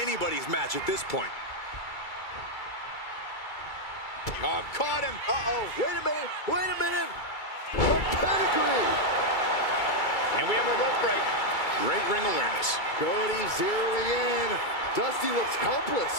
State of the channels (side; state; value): right; late; 2.3 ms